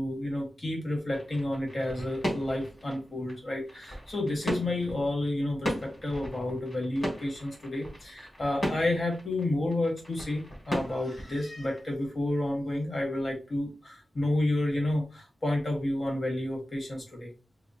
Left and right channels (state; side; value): normal; both; correlation 0.92